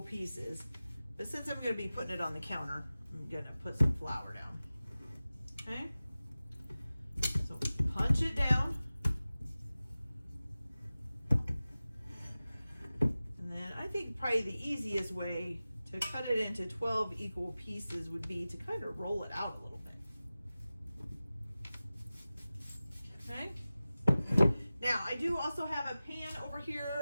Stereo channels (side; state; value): both; inverted; correlation -0.96